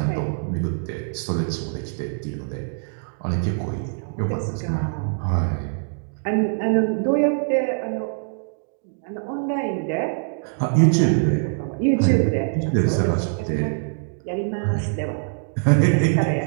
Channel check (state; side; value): silent; left; digital silence